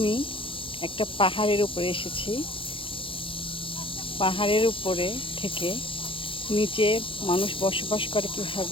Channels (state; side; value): late; right; 0.25 ms